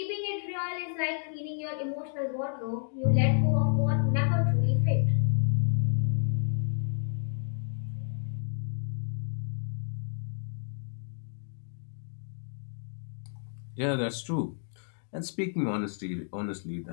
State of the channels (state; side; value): silent; right; digital silence